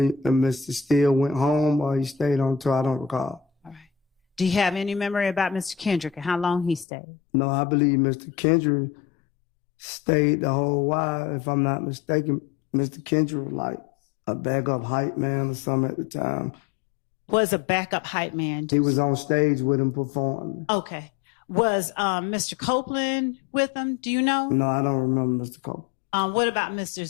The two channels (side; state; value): right; drops out; at 6.9 s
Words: and Mr. Steele went home or he stayed on tour. I don't recall. All right. Do you have any memory about Mr. Kendrick and how long he stayed? No, I believe Mr. Kendrick stayed the whole while. If I'm not mistaken, Mr. Kendrick was like a backup hype man or something at the time. Was a backup hype man? He was on stage with him performing. Okay. Was Mr. Copeland with him? Do you know? No, I don't remember Mr. Copeland. What about Mr.